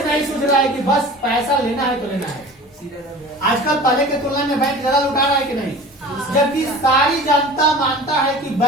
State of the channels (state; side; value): normal; both; correlation 0.39